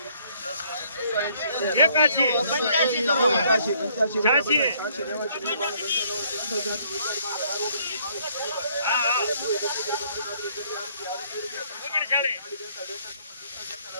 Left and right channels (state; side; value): inverted; both; correlation -0.65